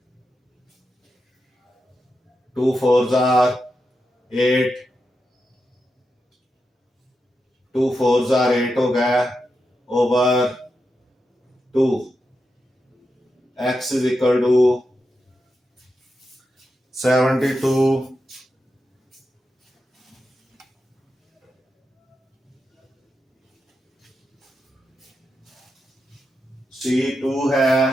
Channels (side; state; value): both; normal; correlation 0.87